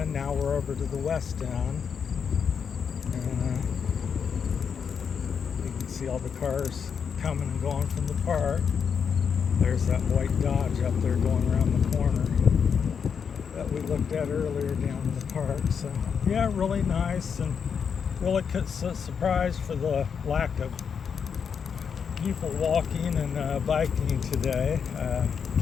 Now we're over to the west end. And you can see all the cars coming and going from the park. There's that white Dodge up there going around the corner that we looked at earlier down in the park. So yeah, really nice, and really surprised for the lack of people walking and biking today.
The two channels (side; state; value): right; quieter; 6.7 dB